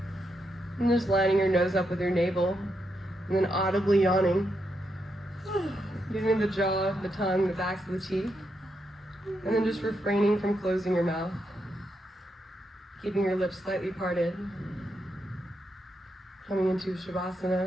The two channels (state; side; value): normal; both; correlation 0.82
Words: And just lining your nose up with your navel. And then audibly yawning. Getting the jaw, the tongue, the backs of the teeth. And then just refraining from closing your mouth. Keeping your lips slightly parted. Coming into